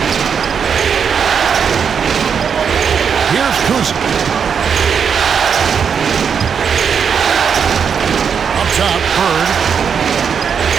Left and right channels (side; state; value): left; quieter; 6.9 dB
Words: Here's Kuzi. Up top, Bird.